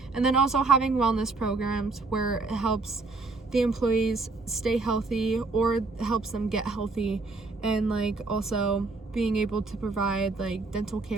And then also having wellness programs where it helps the employees stay healthy or helps them get healthy, and like also being able to provide like dental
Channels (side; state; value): left; quieter; 3.7 dB